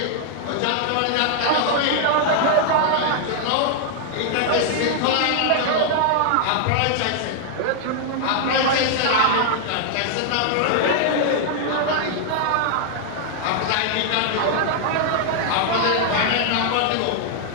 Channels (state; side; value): different; both; correlation -0.01